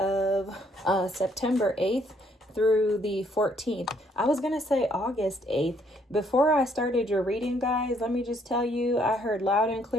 September 8th through the 14th. I was going to say August 8th. Before I started your reading, guys, let me just tell you, I heard loud and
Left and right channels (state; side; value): normal; both; correlation 0.68